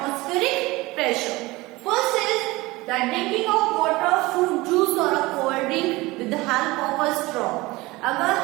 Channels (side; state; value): left; quieter; 21.2 dB